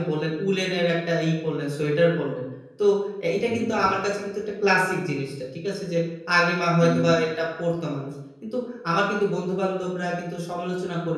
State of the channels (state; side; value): identical; both; correlation 1.00